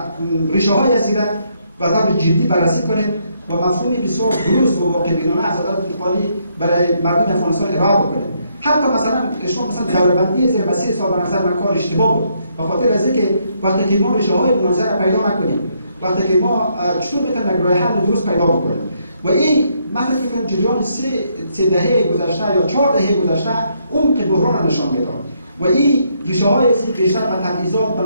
ریشه‌های از ایران و طور جدی بررسی کنیم و مفهومی بسیار درست و واقع‌بینانه از عدالت انتقالی برای مردم افغانستان ارائه بکنیم. حتی مثلا شما دوره‌بندی زیر مسیر صاحب نظر من کار اشتباه بود. به خاطر از اینکه وقتی که ما ریشه‌های مناظره پیدا نکنیم، وقتی که ما چطور بتونیم یک راه حل درست پیدا بکنیم و این من فکر می‌کنم جریان 3 دهه گذشته یا 4 دهه گذشته عمق بحران نشان میداد و این ریشه‌های بیشتر به تبعیضات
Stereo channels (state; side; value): inverted; both; correlation -0.73